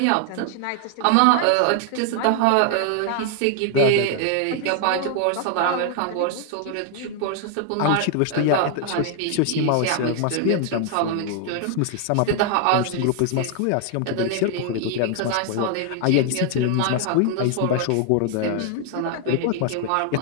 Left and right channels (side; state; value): both; different; correlation 0.00